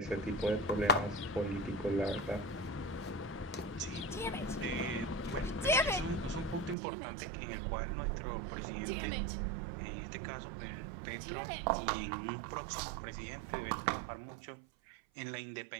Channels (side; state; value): left; drops out; at 6.8 s